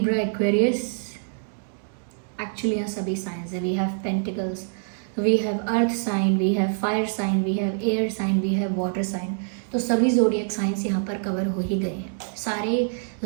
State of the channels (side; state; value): left; silent; digital silence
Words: Aquarius. Actually यहाँ सभी साइंस है। We have pentacles, we have earth sign, we have fire sign, we have air sign, we have water sign. तो सभी zodiac science यहाँ पर cover हो ही गए हैं। सारे